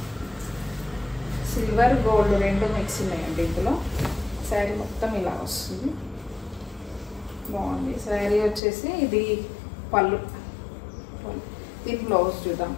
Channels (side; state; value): right; drops out; at 8.6 s